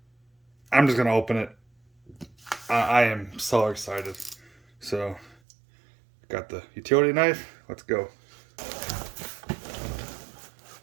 I'm just going to open it. I am so excited. So, got the utility knife. Let's go.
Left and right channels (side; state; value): left; drops out; at 5.4 s